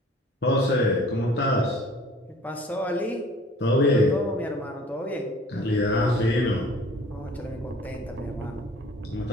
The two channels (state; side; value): normal; both; correlation 0.49